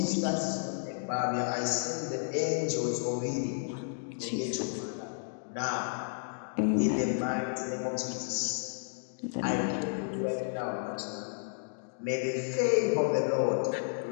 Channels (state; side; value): silent; right; digital silence